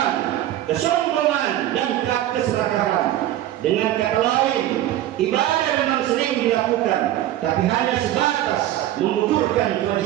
kesombongan, dan keserakahan. Dengan kata lain, ibadah memang sering dilakukan, tapi hanya sebatas mengukurkan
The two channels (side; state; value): left; quieter; 13.4 dB